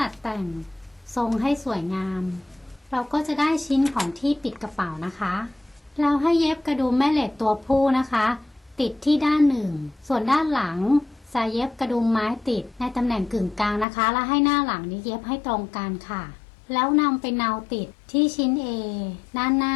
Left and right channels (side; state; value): right; drops out; at 13.9 s